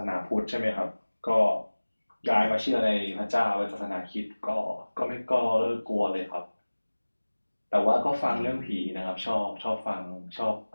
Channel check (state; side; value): inverted; both; correlation -1.00